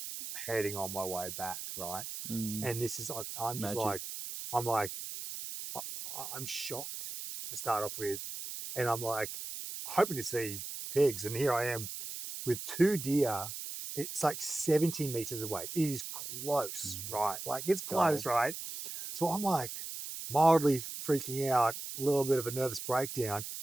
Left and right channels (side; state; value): right; noise; hiss, 8 dB below the sound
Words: heading on my way back, right? And this is I'm just I'm shocked to start off with, and I'm hoping to see pigs, and here I am with 2 deer. It's 70 meters away. It is close, right? It's close, right? So I'm mildly freaking out, a little bit of a nervous breakdown,